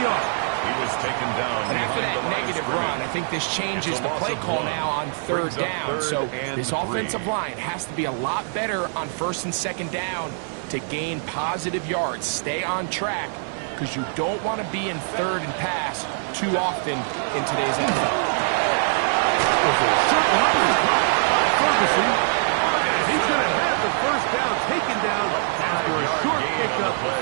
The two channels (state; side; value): silent; left; 61 dB below the other